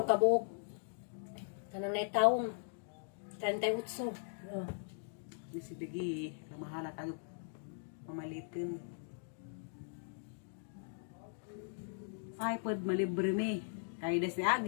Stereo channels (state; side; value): silent; right; digital silence